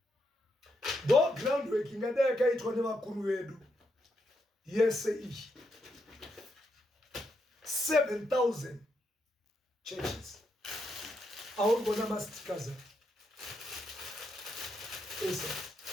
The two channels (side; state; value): both; normal; correlation 0.80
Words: Though groundwork ingadeka itwa nevakuru vedu yese iyi 7,000 churches. Aurikuona mastikers esa